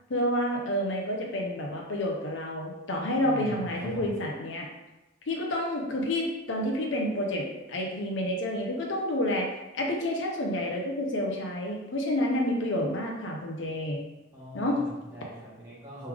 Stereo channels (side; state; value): both; normal; correlation 0.23